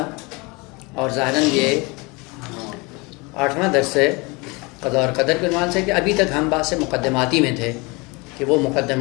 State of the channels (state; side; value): quieter; right; 26.8 dB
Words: اور ظاہراً یہ 8واں درس ہے قضاء اور قدر کے عنوان سے کہ ابھی تک ہم بحث مقدماتی میں تھے کہ وہ